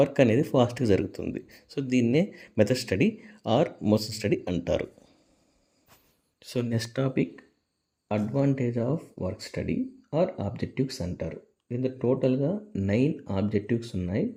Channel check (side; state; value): both; identical; correlation 1.00